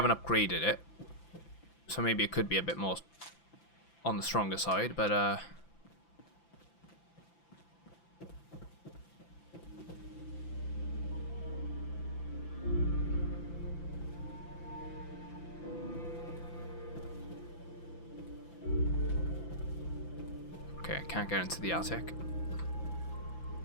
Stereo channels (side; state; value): right; late; 5.9 ms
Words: upgraded it, so maybe it could be a bit more on the stronger side, but okay, I can't get into the attic.